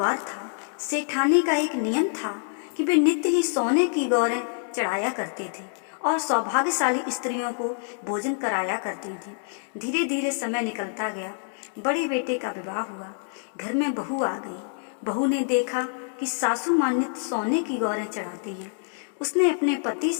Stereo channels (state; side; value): silent; right; digital silence